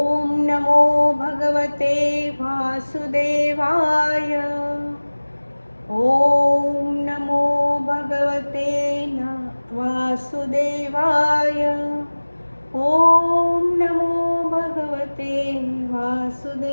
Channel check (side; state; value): both; inverted; correlation -1.00